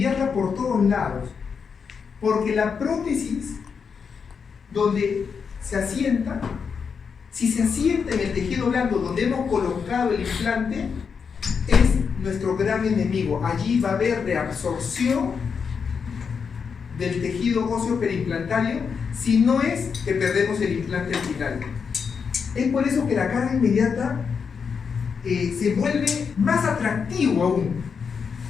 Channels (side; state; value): right; quieter; 6.1 dB